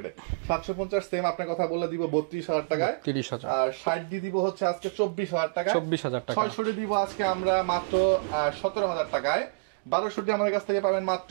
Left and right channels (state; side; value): quieter; left; 33.9 dB